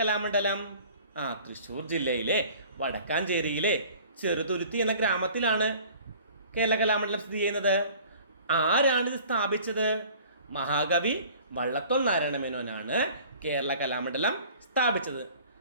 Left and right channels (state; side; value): inverted; both; correlation -0.48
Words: കലാമണ്ഡലം? തൃശ്ശൂർ ജില്ലയിലെ വടക്കാഞ്ചേരിയിലെ ചെറുതുരുത്തി എന്ന ഗ്രാമത്തിലാണ് കേരള കലാമണ്ഡലം സ്ഥിതി ചെയ്യുന്നത്. ആരാണിത് സ്ഥാപിച്ചത്? മഹാകവി വള്ളത്തോൾ നാരായണ മേനോനാണ് കേരള കലാമണ്ഡലം സ്ഥാപിച്ചത്.